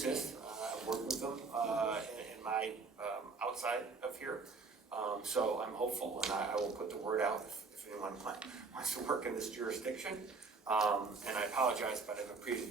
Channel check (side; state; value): left; quieter; 4.3 dB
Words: I've worked with them in my outside of here. So I'm hopeful, and I will put the word out if anyone wants to work in this jurisdiction. And I apologize, but I have a previous